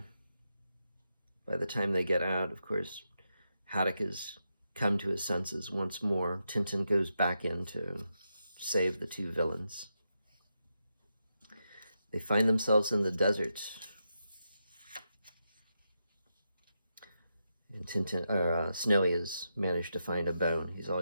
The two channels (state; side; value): inverted; both; correlation -0.85